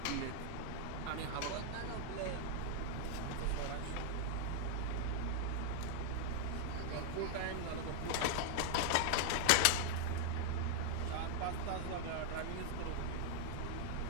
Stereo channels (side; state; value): both; different; correlation 0.00